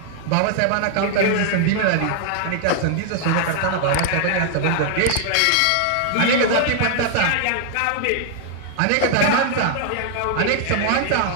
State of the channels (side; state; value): both; different; correlation 0.00